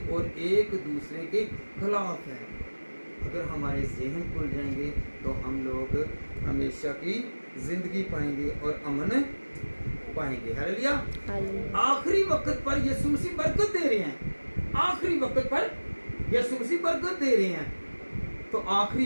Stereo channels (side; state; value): both; inverted; correlation -1.00